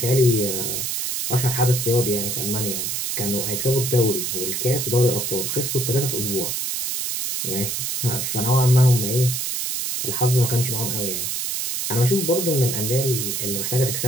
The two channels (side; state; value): right; noise; hiss, 2 dB below the sound